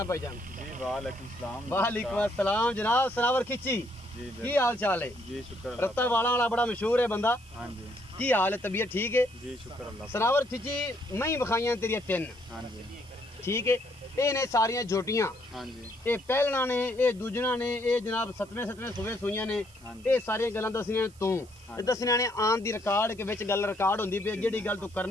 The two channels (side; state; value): right; noise; hiss, 26 dB below the sound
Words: भाईजान जी। वालेकुम सलाम। वालेकुम अस्सलाम जनाब सनावर खिची जी की हाल चाल है? जी शुक्र रत्ता वाला बड़ा मशहूर है बंदा। हाँ जी। की हाल है? तबीयत ठीक है? जी शुक्र अल्लाह। सनावर खिची मैं ही बखाइयां तेरिया 3। हाँ जी ठीक है ये ने सारियां झोटियां हाँ जी ये पहलना ने ये दूजना ने ये जनाब सतवें सूबे सूइयां ने ये सारियां गल्लां दसनियां तू दसनियां ने आन दी रिकॉर्ड के विच गल रिकॉर्ड हुंदी पे जेड़ी गल तू